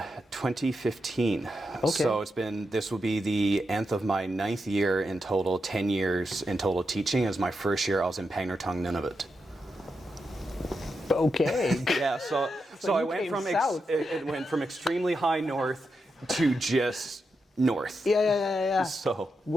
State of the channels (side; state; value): both; normal; correlation 0.86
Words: 2015. Okay. So this will be the nth of my 9th year in total, 10 years in total teaching. As my first year I was in Pangnirtung, Nunavut. Okay. Yeah, so I went from it went from extremely high north to just north. Yeah. So